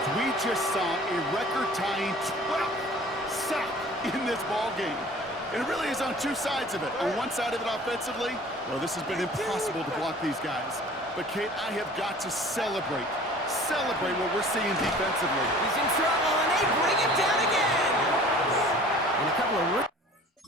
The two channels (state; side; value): normal; both; correlation 0.47